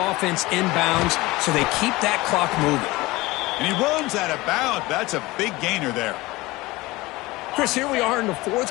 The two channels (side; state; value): right; quieter; 20.6 dB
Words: in bounds so they keep that clock moving. And he runs out of bounds. That's a big gainer there. Chris, here we are in the